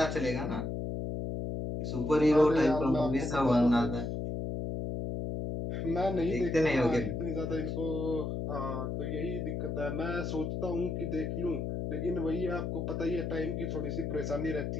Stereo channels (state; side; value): noise; left; hum, 3 dB below the sound